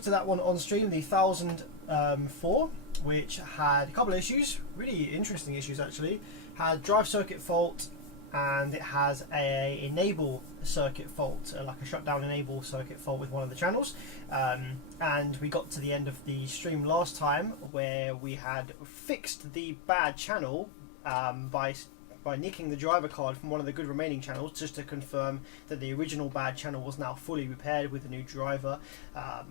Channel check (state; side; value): drops out; right; at 17.7 s